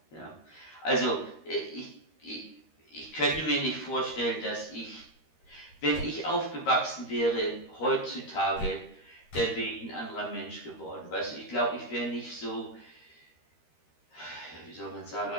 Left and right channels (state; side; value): late; right; 13 ms